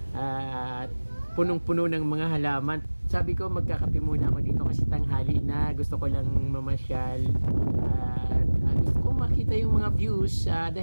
at punong-puno ng mga halaman. Sabi ko magkakape muna ako dito kasi tanghali na, gusto ko lang mamasyal, at gusto ko makita yung mga views,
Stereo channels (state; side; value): inverted; both; correlation -1.00